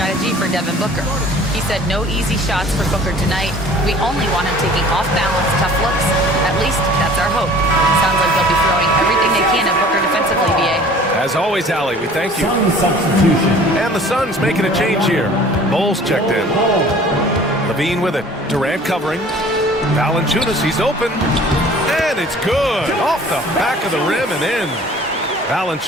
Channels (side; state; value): both; normal; correlation 0.49